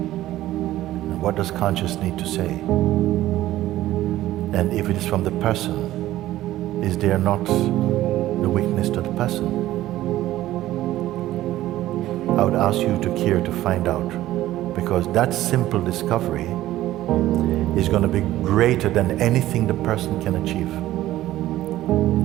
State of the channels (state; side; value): quieter; left; 14.8 dB